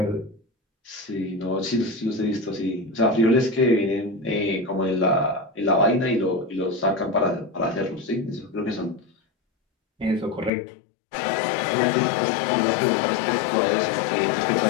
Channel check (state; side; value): drops out; right; at 10.5 s